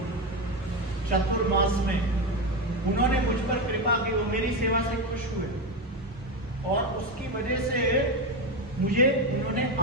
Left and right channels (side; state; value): both; normal; correlation 0.14